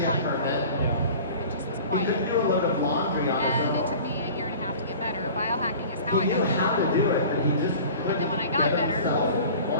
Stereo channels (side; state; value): both; inverted; correlation -0.42